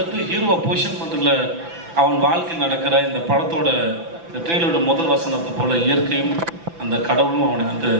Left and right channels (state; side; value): late; left; 5.9 ms